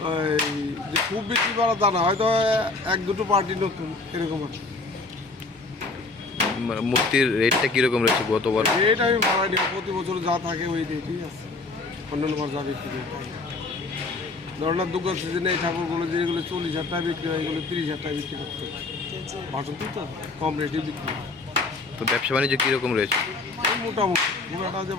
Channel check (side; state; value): right; quieter; 3.5 dB